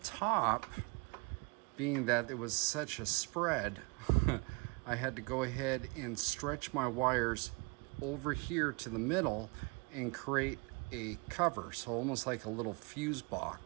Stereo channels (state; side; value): quieter; left; 30.8 dB